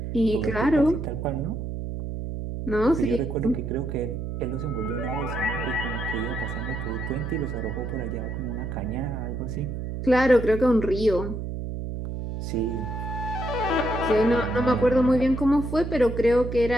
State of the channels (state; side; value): noise; right; hum, 5 dB below the sound